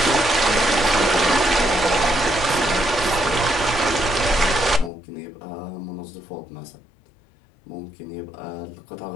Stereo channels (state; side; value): drops out; right; at 4.9 s